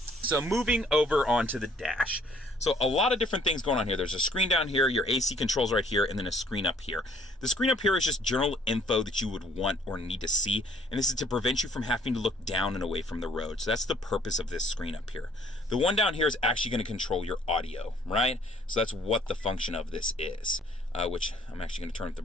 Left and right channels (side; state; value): both; normal; correlation 0.60